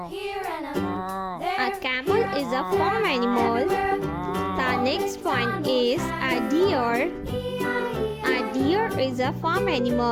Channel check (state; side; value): identical; both; correlation 1.00